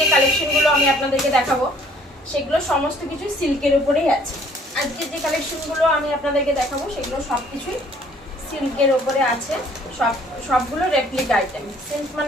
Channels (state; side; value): normal; both; correlation 0.58